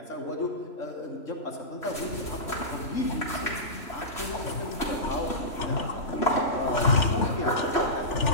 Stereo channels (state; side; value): late; right; 3.1 ms